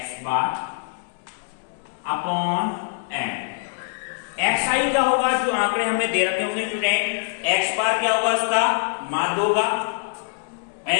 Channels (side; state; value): right; silent; 61 dB below the other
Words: bar upon n। xi क्या होगा, जो आंकड़े हमें दे रखे होंगे स्टूडेंट। x बार क्या होगा, उसका माध्य होगा।